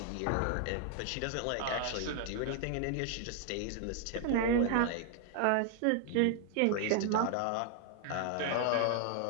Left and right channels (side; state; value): both; different; correlation 0.00